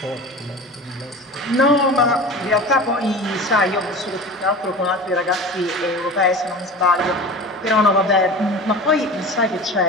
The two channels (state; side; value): normal; both; correlation 0.34